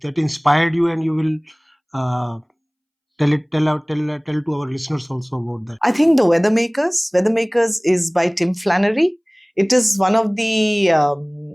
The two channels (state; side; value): identical; both; correlation 1.00